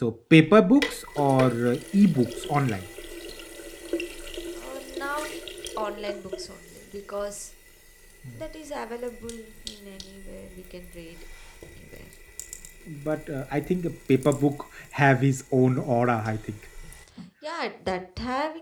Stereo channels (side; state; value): both; identical; correlation 1.00